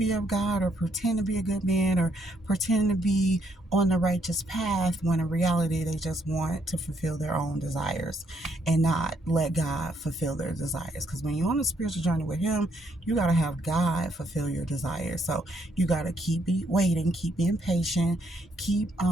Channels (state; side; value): normal; both; correlation 0.73